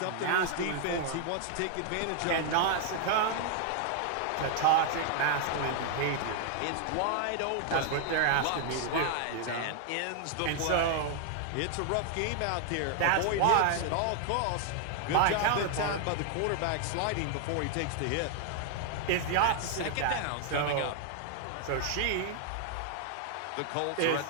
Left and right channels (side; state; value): both; different; correlation 0.00